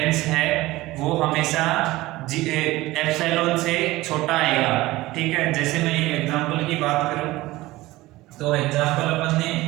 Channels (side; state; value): left; quieter; 18.6 dB